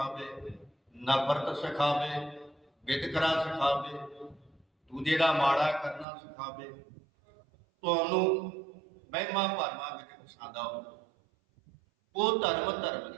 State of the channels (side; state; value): left; drops out; at 6.1 s